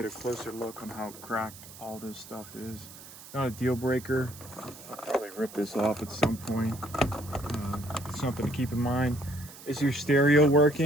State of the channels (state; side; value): noise; right; hiss, 17 dB below the sound